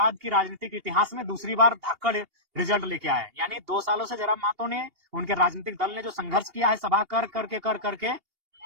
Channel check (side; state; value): left; late; 2.8 ms